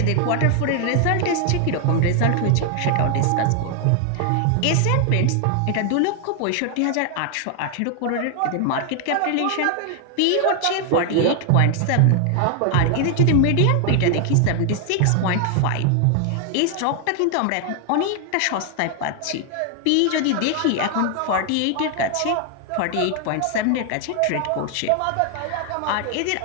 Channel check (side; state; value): both; different; correlation 0.00